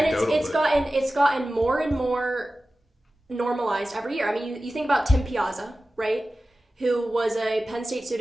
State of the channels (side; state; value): both; normal; correlation 0.95